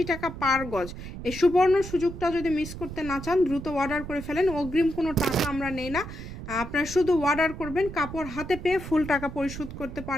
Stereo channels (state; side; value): noise; right; rumble, 10 dB below the sound